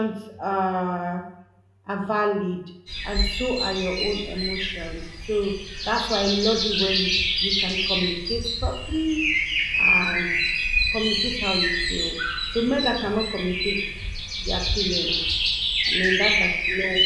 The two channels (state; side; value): identical; both; correlation 1.00